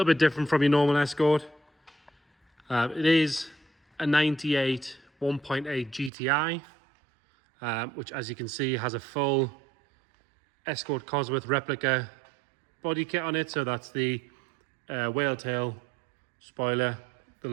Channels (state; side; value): drops out; left; at 6.1 s